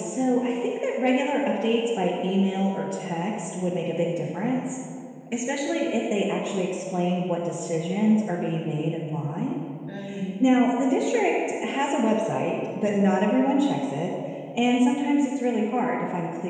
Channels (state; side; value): identical; both; correlation 1.00